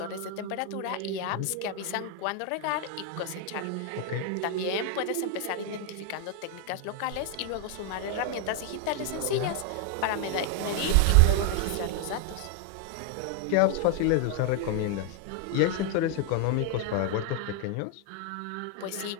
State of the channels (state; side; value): different; both; correlation 0.00